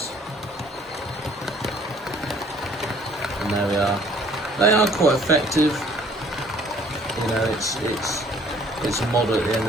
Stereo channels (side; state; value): both; normal; correlation 0.58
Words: And there we are. They are quite effective. You know, it's a model at the end